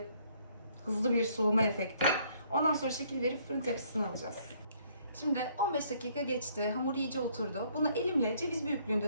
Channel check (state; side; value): inverted; both; correlation -0.65